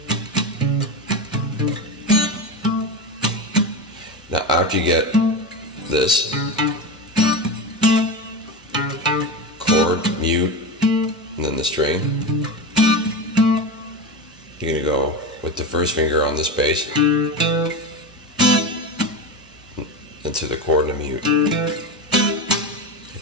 Now after you get this chord, mute, and then the string, you're going to go with the first finger on this bass into the chord and a mute,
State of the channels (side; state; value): both; normal; correlation 0.20